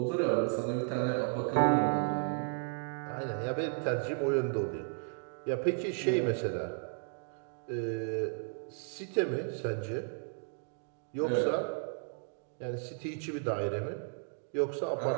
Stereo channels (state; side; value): silent; left; 55 dB below the other